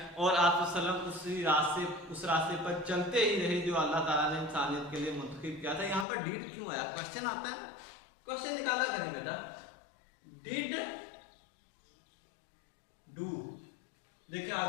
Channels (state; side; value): drops out; right; at 6.1 s